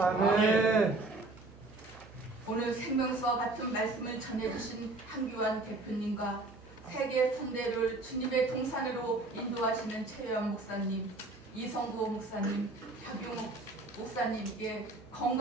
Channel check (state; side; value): quieter; left; 3.1 dB